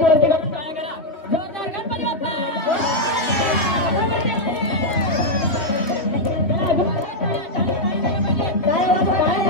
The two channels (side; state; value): right; late; 2.7 ms